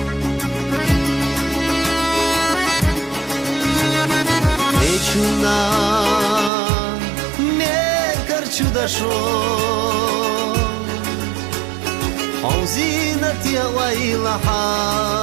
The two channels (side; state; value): left; drops out; at 6.5 s